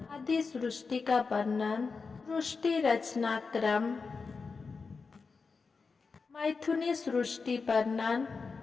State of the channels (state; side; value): quieter; right; 4.7 dB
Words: आदि सृष्टि का वर्णन, सृष्टि रचना क्रम, मैथुनी सृष्टि वर्णन।